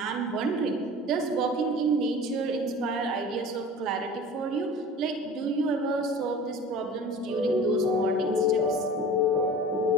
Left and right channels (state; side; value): normal; both; correlation 0.39